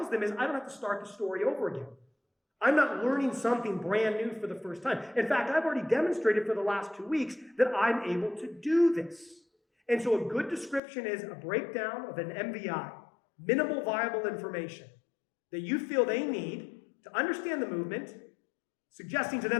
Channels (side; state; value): right; drops out; at 10.8 s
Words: them is I don't have to start the story over again. I'm not learning something brand new for the first time. In fact, I've already demonstrated for the last 2 weeks that I'm able to do this. And so a good description is a breakdown of an MVI, minimal viable information, that you feel they need to understand the movement, suggesting to